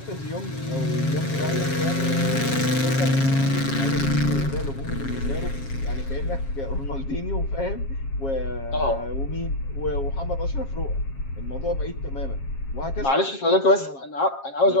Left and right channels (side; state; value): right; late; 7.4 ms